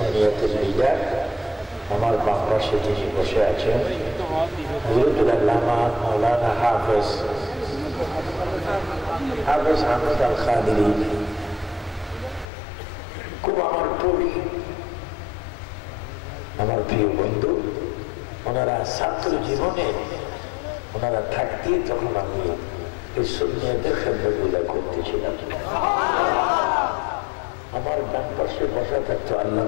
লিডার আমার বাম পাশে যিনি বসে আছেন হযরতুল আল্লামা মাওলানা হাফেজ আহমদ আল খাদিরি, খুব আমার কবি, আমার প্রিয় বন্ধু। ওনারা ছাত্র জীবনে ওনারা থাকতে তখন আমি এই সুন্নিয়তের খেদমতগুলো করতেছিলাম। আমার ডান পাশে বসা থাকতো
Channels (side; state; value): right; drops out; at 12.5 s